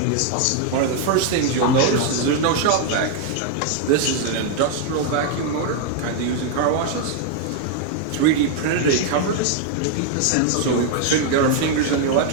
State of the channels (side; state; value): both; different; correlation 0.00